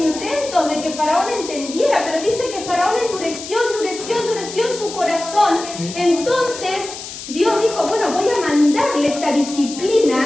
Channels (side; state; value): left; noise; hiss, 11 dB below the sound